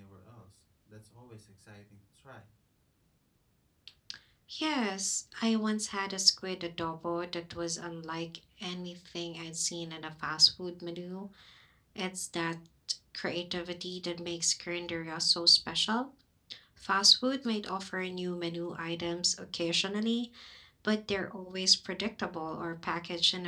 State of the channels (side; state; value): both; identical; correlation 1.00